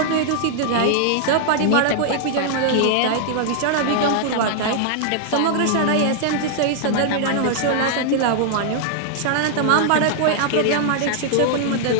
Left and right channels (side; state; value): both; different; correlation -0.01